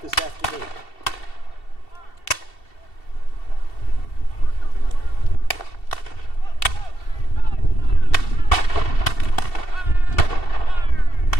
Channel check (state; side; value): late; right; 2.7 ms